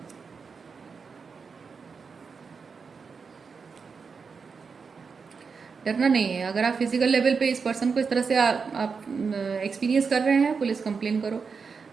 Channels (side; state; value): left; quieter; 5.4 dB